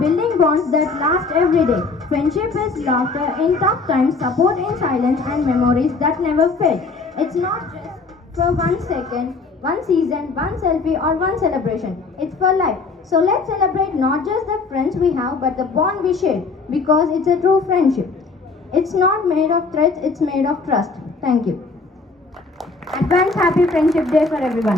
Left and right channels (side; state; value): right; quieter; 4.0 dB